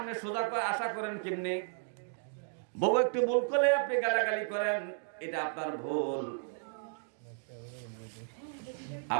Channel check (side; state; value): left; silent; digital silence